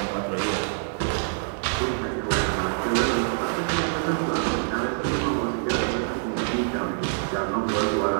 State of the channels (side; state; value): left; silent; digital silence